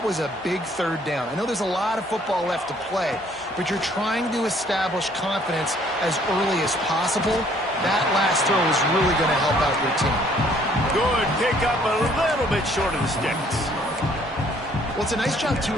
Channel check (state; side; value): normal; both; correlation 0.61